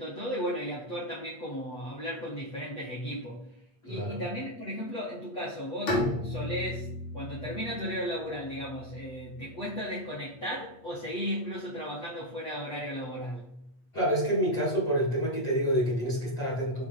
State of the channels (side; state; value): right; late; 8.4 ms